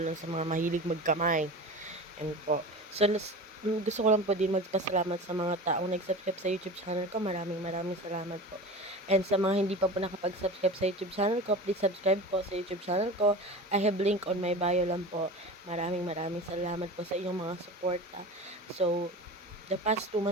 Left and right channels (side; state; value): both; normal; correlation 0.33